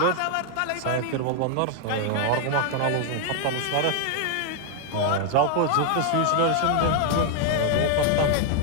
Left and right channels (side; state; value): both; different; correlation 0.00